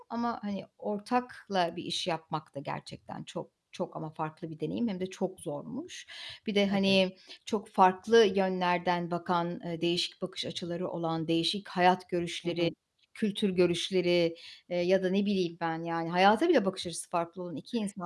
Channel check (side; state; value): both; identical; correlation 1.00